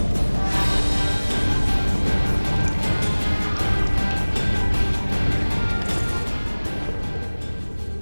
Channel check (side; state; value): both; inverted; correlation -1.00